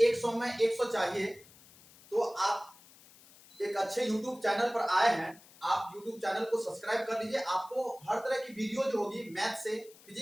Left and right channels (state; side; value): noise; left; hiss, 24 dB below the sound